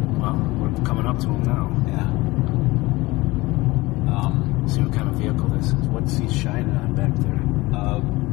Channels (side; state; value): right; quieter; 20.8 dB